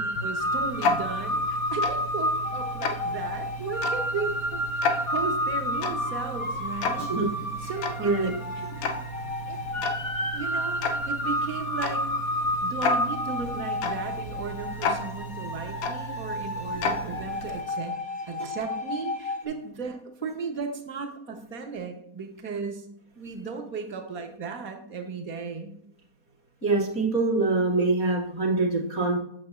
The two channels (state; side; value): late; right; 4.2 ms